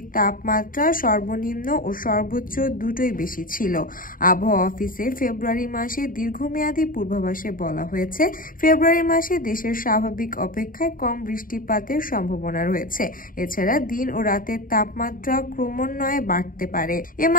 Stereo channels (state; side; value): late; right; 0.40 ms